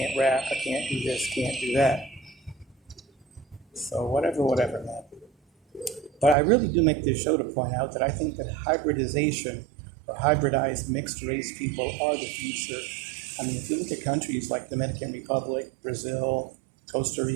rap. I can't do this, can't do that. So whatever, man. But I really do make this show to point out that I think that hybridization or hybridized mixed race people are the future. If you look at countries like Dominican Republic, Brazil, Costa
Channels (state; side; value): drops out; left; at 6.4 s